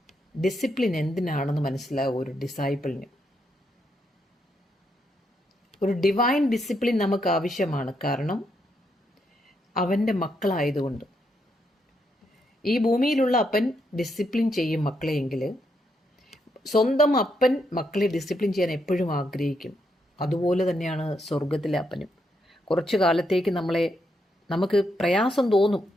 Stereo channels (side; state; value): both; normal; correlation 0.79